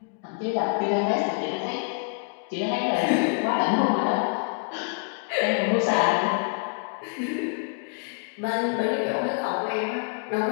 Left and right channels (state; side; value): quieter; right; 37.6 dB